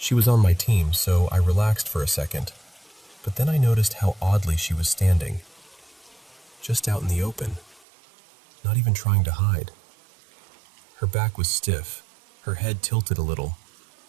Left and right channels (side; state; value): left; drops out; at 7.9 s